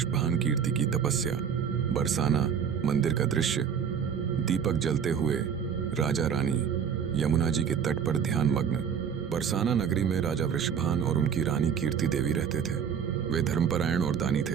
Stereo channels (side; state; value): left; quieter; 7.5 dB